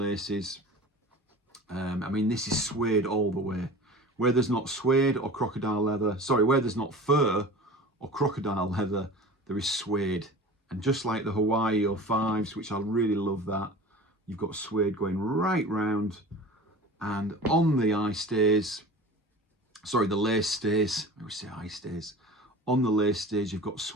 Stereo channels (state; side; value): normal; both; correlation 0.38